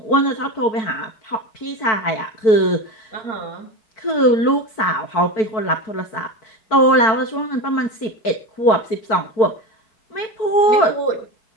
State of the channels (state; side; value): late; right; 4.5 ms